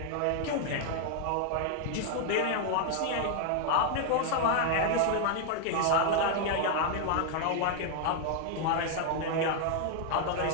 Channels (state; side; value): different; both; correlation 0.00